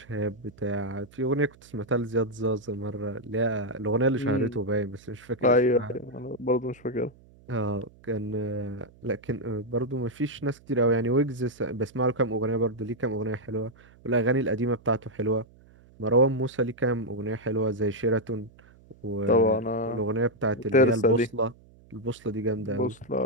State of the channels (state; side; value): noise; right; hum, 26 dB below the sound